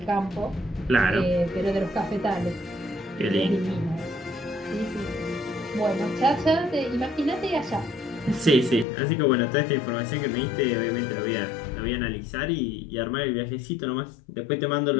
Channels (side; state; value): right; drops out; at 8.8 s